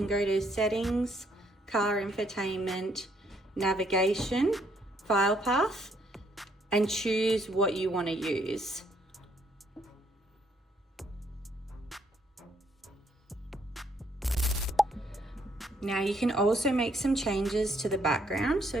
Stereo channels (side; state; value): both; normal; correlation 0.70